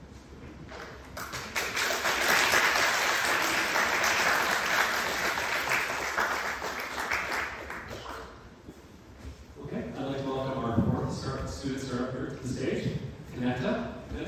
Okay, I'd like to welcome our fourth student startup here to the stage, CONNECTA.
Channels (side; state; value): both; identical; correlation 1.00